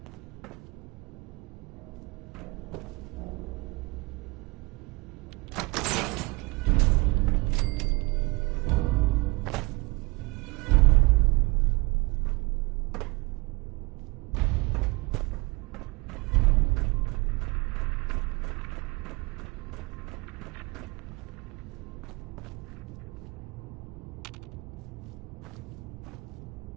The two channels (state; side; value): quieter; left; 24.9 dB